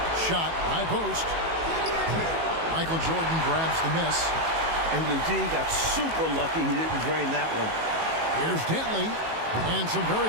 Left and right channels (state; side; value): late; left; 18 ms